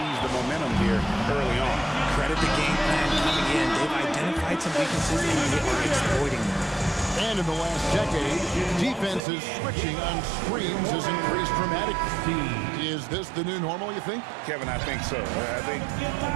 the momentum here early on. Credit the game plan coming in. They've identified some weaknesses, and they are exploiting them. And in the last decade, defenses switching on screens has increased dramatically. Is this the new normal, you think? Kevin, I think so. I think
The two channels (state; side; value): drops out; left; at 9.2 s